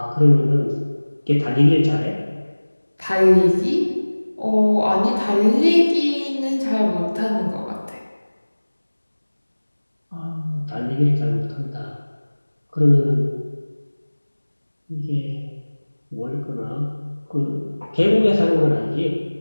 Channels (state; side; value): inverted; both; correlation -1.00